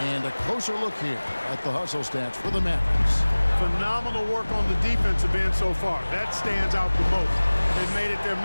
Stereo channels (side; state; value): both; inverted; correlation -1.00